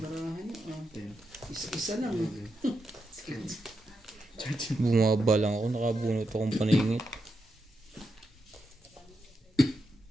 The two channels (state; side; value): normal; both; correlation 0.85